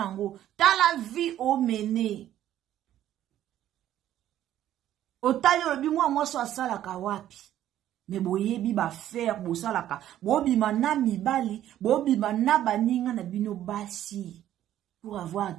tala vie o mene otali obi mwa so asala ka wapi me boyebi ba faire bosalaka bobima na mibali bobima na baninga na bino basi pour avoir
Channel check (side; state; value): left; quieter; 12.1 dB